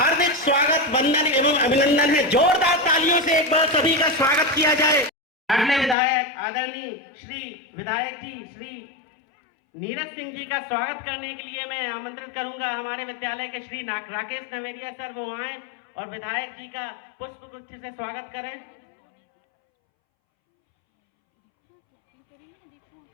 स्वागत, वंदन एवं अभिनंदन है। जोरदार तालियों से एक बार सभी का स्वागत किया जाए। अगले विधायक आदरणीय श्री विधायक जी श्री नीरज सिंह जी का स्वागत करने के लिए मैं आमंत्रित करूंगा हमारे विद्यालय के श्री राकेश नवेरिया सर, वो आए और विधायक जी का पुष्प गुच्छ से स्वागत करें।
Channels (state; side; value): drops out; right; at 6.0 s